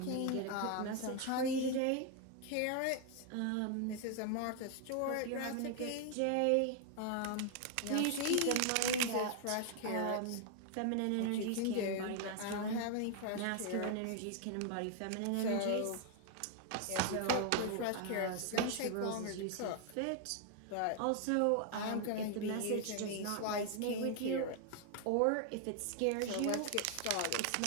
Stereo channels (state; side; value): different; both; correlation 0.00